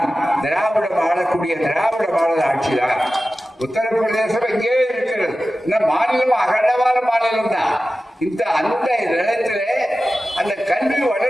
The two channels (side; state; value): both; normal; correlation 0.95